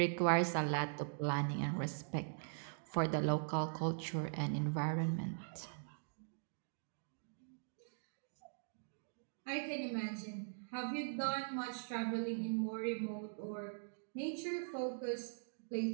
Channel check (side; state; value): left; silent; digital silence